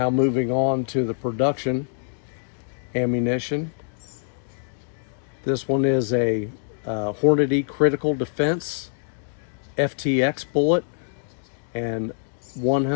moving on to the production ammunition. This one is a Hornady Critical Defense FTX bullet and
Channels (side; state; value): right; silent; digital silence